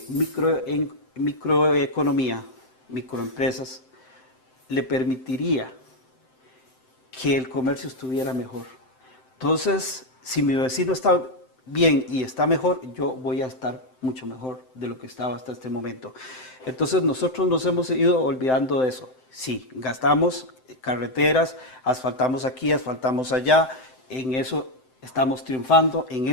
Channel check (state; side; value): late; right; 7.8 ms